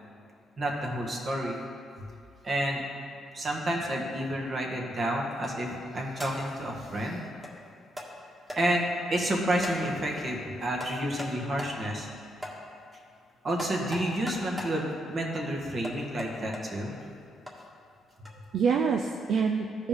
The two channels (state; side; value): normal; both; correlation 0.79